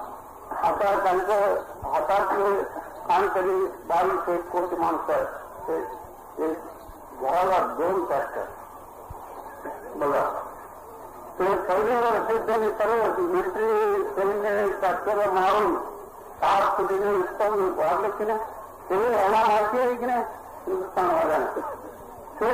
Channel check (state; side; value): identical; both; correlation 1.00